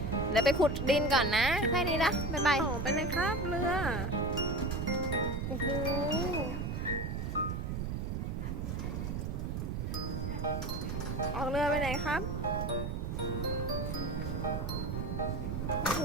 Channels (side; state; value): right; noise; rumble, 2 dB below the sound